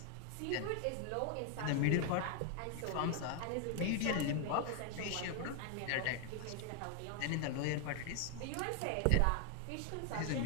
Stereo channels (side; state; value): both; different; correlation 0.00